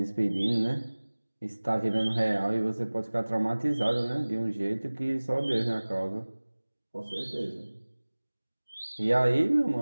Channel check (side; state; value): both; inverted; correlation -1.00